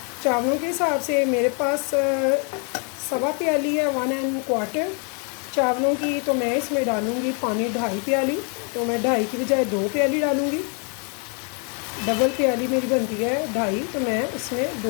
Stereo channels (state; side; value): quieter; right; 38.7 dB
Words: चावलों के हिसाब से। मेरे पास 1.25 प्याली है, 1¼ चावलों की, तो मैं इसमें डालूँगी पानी 2.5 प्याली। तो मैं 2.5 की बजाय 2 प्याली डालूँगी। डबल प्याली मेरी बनती है 2.5, तो मैं इसमें